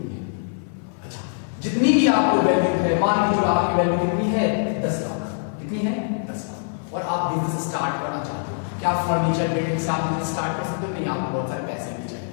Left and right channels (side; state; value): right; silent; 59 dB below the other